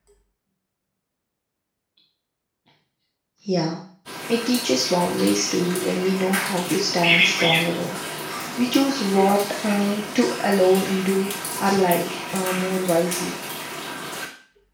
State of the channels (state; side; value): identical; both; correlation 1.00